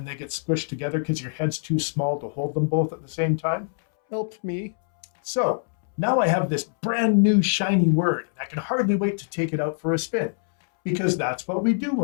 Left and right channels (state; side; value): silent; right; 62 dB below the other